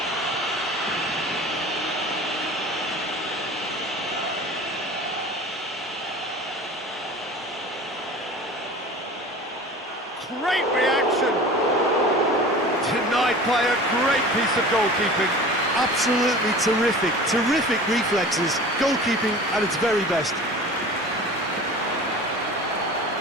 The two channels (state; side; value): normal; both; correlation 0.39